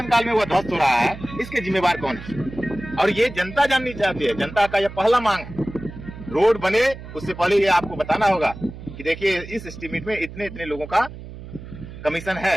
में वो ध्वस्त हो रहा है, इसके जिम्मेवार कौन है? और ये जनता जाननी चाहती है। जनता का यह पहला मांग है, रोड बने उससे पहले ये आपको बताना होगा कि देखिए इस एस्टीमेट में इतने इतने लोगों का कमीशन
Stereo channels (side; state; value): right; noise; hum, 13 dB below the sound